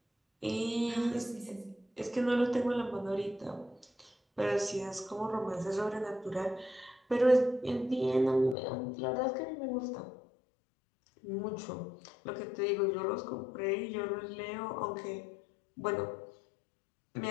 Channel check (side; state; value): right; drops out; at 8.6 s